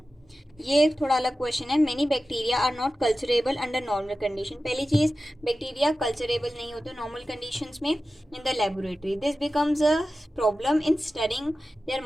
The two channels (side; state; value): both; normal; correlation 0.94